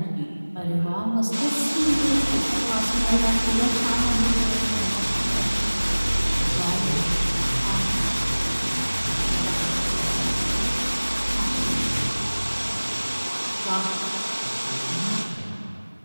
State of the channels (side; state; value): both; inverted; correlation -1.00